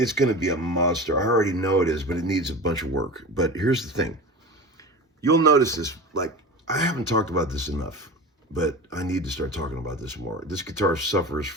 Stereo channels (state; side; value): normal; both; correlation 0.32